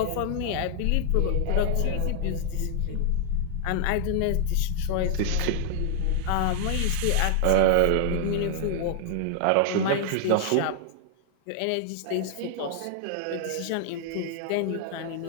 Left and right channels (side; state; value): both; different; correlation 0.00